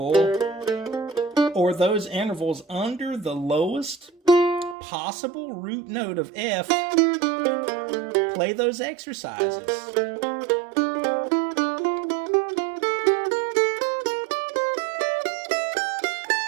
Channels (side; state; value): left; drops out; at 4.8 s